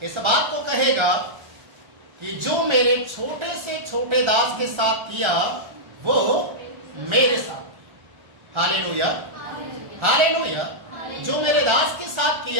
इस बात को कहेगा कि जो मेरे छोटे से छोटे दास के साथ किया वो मेरे साथ। Hallelujah, hallelujah. जो मेरे दास के साथ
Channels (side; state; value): left; late; 1.3 ms